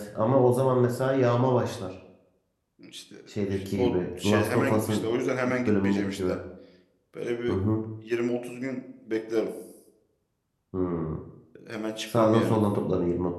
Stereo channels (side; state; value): both; identical; correlation 1.00